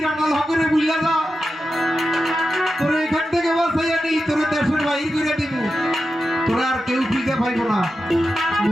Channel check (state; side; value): normal; both; correlation 0.90